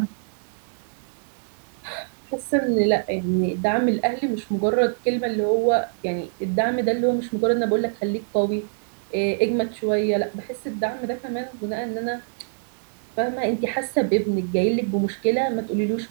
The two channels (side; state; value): left; silent; 62 dB below the other